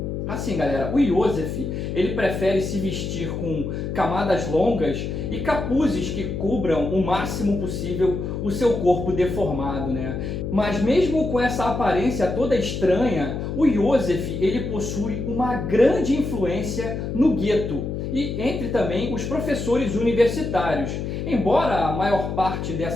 Assim, galera, o Iosef, ele prefere se vestir com camadas longas e capuzes que cubram o máximo possível o seu corpo deformado, né? Mas mesmo com essa aparência toda estranha, o Iosef, ele possui uma grande influência no gueto e entre também os professores universitários, embora a maior parte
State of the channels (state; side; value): noise; left; hum, 4 dB below the sound